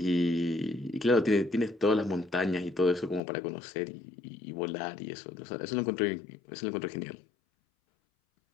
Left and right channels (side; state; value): right; drops out; at 3.2 s